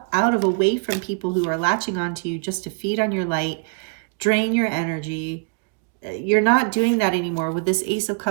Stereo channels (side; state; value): left; quieter; 35.5 dB